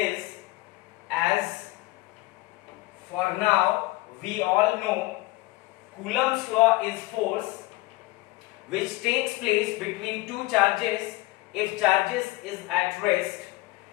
as for now we all know Coulomb's law is force which takes place between two charges if charges is at rest.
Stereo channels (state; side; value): quieter; right; 20.6 dB